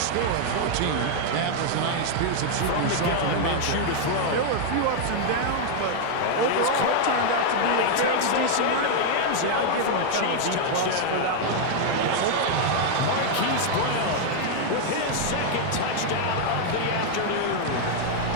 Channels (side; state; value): both; different; correlation 0.00